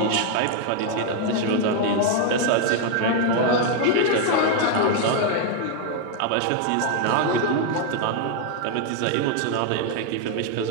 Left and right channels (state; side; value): different; both; correlation 0.01